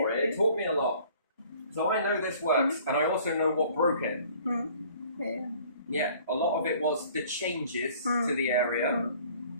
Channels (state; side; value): inverted; both; correlation -0.53